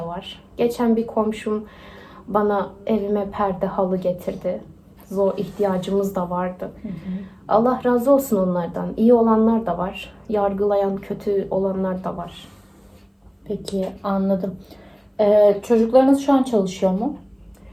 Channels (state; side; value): identical; both; correlation 1.00